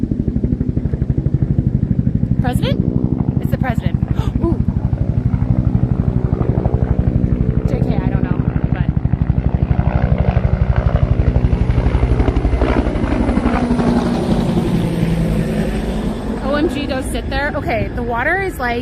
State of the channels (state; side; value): identical; both; correlation 1.00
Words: President? It's the president. Ooh. JK, I don't know, but OMG, go sit there. Okay, the water is